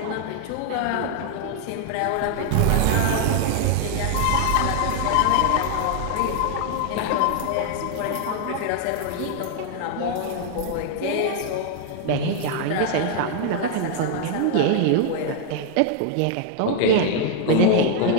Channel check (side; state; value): both; different; correlation 0.00